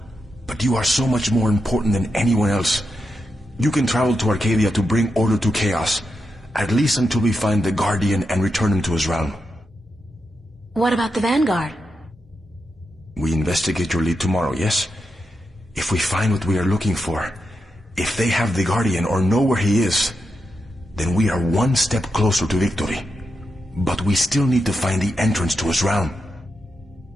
but you are so much more important than anyone else. You can travel to Arcadia to bring order to chaos, at least until we find the Guardian and return him to his realm. What about the Vanguard? We investigate your lead tomorrow, yes? If we find what we are looking for, if they have the Guardian or know where he is, then we are one step closer to victory. But we still need to find the entrance to his realm.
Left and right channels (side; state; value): both; normal; correlation 0.87